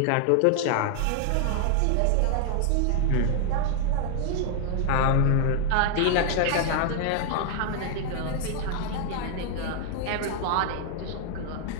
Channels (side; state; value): both; different; correlation 0.00